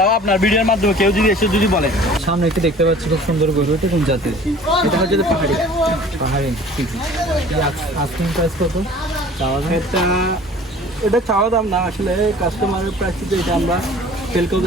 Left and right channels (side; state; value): both; normal; correlation 0.47